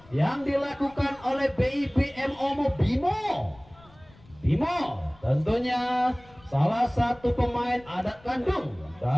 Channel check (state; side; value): noise; left; rumble, 25 dB below the sound